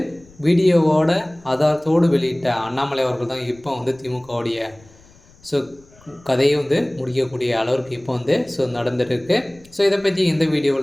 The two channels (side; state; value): left; noise; rumble, 27 dB below the sound